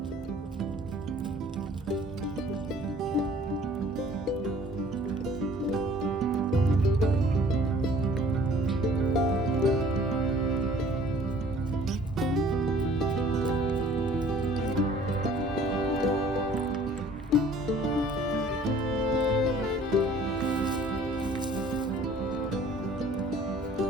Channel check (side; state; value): both; normal; correlation 0.53